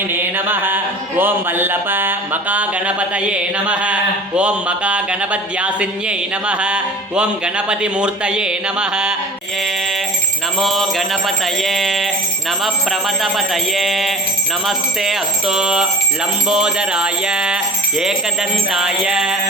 ನಮಃ. ಓಂ ವಲ್ಲಭ ಮಕಾ ಗಣಪತಯೇ ನಮಃ. ಓಂ ಮಕಾ ಗಣಪತ್ಯಾಸಿನ್ಯೈ ನಮಃ. ಓಂ ಗಣಪತಿ ಮೂರ್ತಯೇ ನಮಃ. ನಮೋ ಗಣಪತಯೇ ನಮಃ ಪ್ರಮಥಪತಯೇ ನಮಸ್ತೆ ಅಸ್ತು ಲಂಬೋದರಾಯ ಏಕದಂತಾಯ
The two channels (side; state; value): both; normal; correlation 0.39